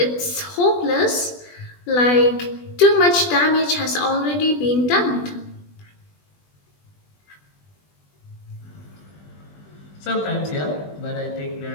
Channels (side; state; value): right; late; 20 ms